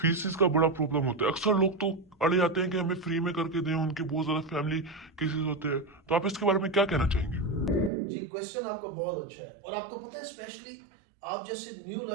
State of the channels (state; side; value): drops out; left; at 7.9 s